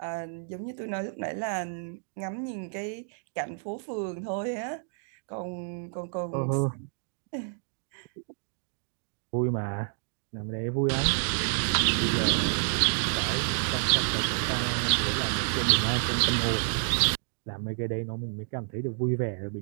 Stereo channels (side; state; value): left; silent; 58 dB below the other